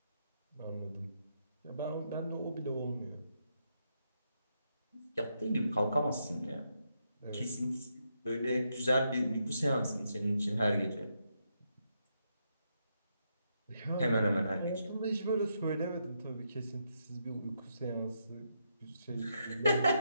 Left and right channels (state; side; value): inverted; both; correlation -0.80